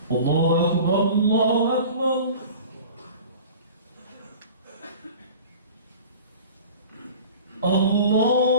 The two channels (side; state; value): both; inverted; correlation -0.41